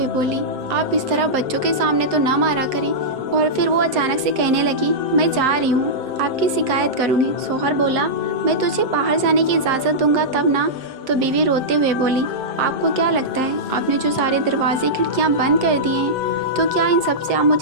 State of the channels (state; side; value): late; left; 7.6 ms